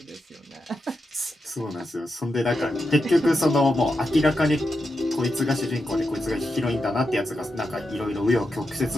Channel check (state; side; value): normal; both; correlation 0.87